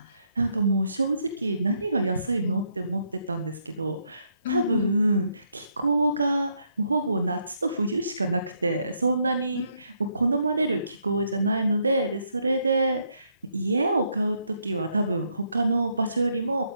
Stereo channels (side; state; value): both; inverted; correlation -0.75